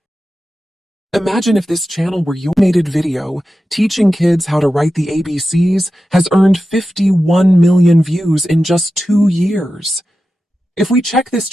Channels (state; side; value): normal; both; correlation 0.92